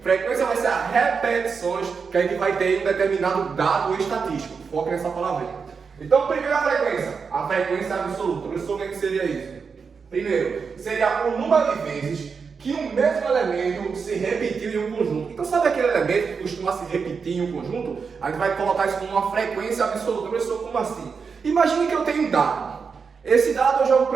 Frequência vai ser as repetições que a gente vai ter em um determinado dado estatístico. Foca nessa palavrinha. Então, primeiro a frequência absoluta. Resumo que seria isso. Primeiro, seria o número de vezes que um mesmo elemento se repetiu em um conjunto. Então, sabe aquele elemento que costuma se repetir em um conjunto? A gente vai colocar isso como uma frequência absoluta. Professor, como assim? Imagine que eu tenho um dado. Esse dado eu jogo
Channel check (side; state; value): left; quieter; 5.6 dB